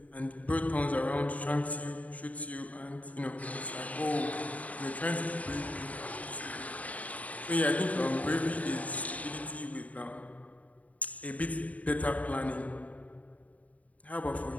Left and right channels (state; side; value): late; right; 0.070 ms